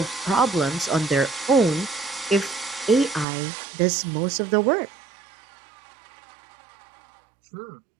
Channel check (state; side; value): drops out; left; at 3.2 s